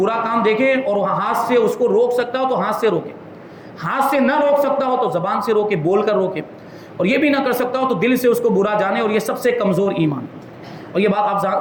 کام دیکھے اور ہاتھ سے اس کو روک سکتا ہو تو ہاتھ سے روکے، ہاتھ سے نہ روک سکتا ہو تو زبان سے روکے، بول کر روکے، اور یہ بھی نہ کر سکتا ہو تو دل سے اس کو برا جانے. اور یہ سب سے کمزور ایمان. اور یہ بات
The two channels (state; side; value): identical; both; correlation 1.00